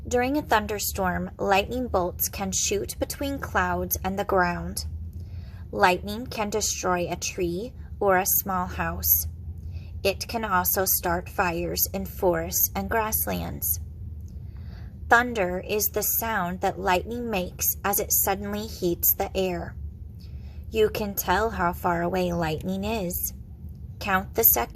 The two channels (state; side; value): identical; both; correlation 1.00